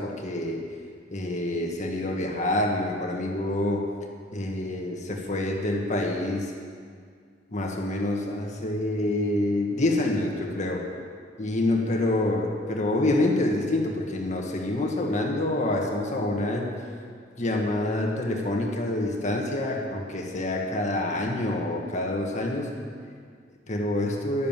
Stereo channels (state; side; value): normal; both; correlation 0.52